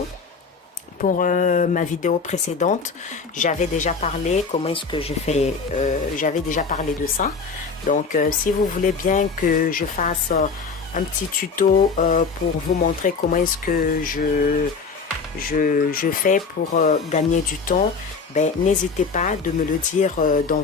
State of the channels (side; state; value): right; quieter; 5.0 dB